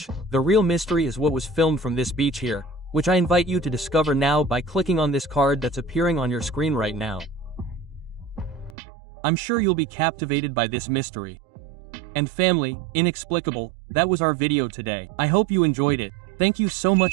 the real mystery is what was filmed from this beach here, which I invite you to discover now by clicking on this card that's appearing on your screen right now. I'm sure you'll be captivated by this mystery. And family, inexplicable, that was our video today. I hope you enjoyed it. Thank you so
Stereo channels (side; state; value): left; drops out; at 8.8 s